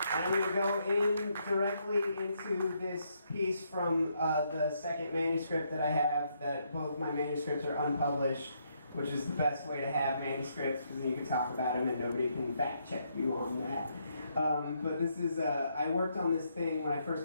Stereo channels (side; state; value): both; inverted; correlation -0.75